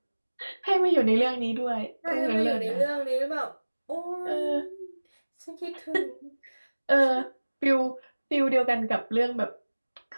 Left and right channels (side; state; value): both; inverted; correlation -1.00